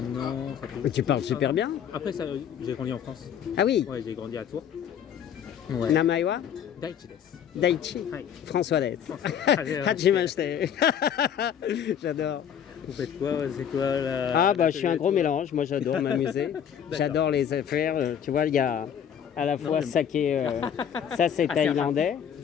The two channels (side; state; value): right; quieter; 8.7 dB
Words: an. Ça fait... Mais tu parles super bien. Après, ça, j'ai grandi en France. Ah oui, Ouais, j'ai grandi à Tours. Ouais. Namaiwa Daichi desu. Daichi, Ouais. François Dette. Hajime- Hajimashite. J'adore. Vous faites quoi? C'est quoi la... Ah bah je suis un gros mélange, moi j'adore m'amuser, j'adore les affaires, tu vois il y a à la fois saké, ça c'est Ah, thaïlandais,